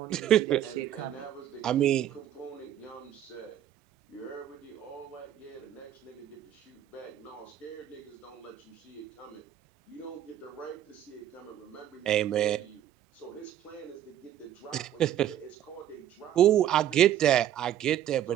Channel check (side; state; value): left; quieter; 11.1 dB